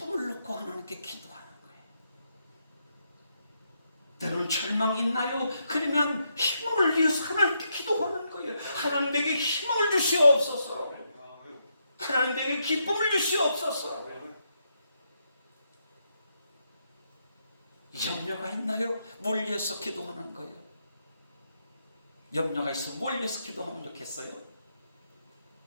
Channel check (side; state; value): both; inverted; correlation -0.80